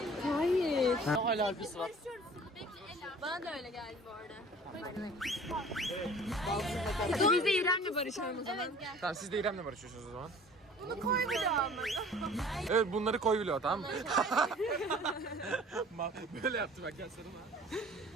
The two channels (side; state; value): both; normal; correlation 0.48